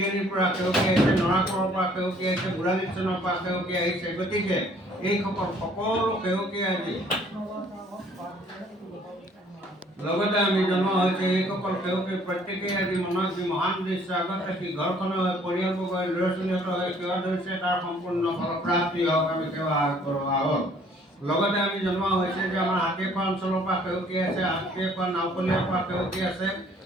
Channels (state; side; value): normal; both; correlation 0.59